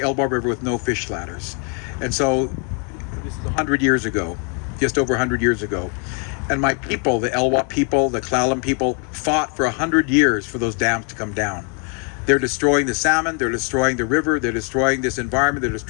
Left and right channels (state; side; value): quieter; right; 38.2 dB